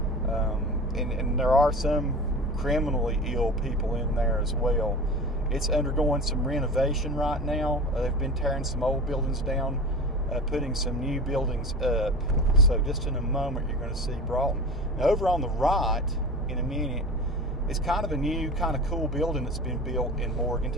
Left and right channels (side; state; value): both; normal; correlation 0.32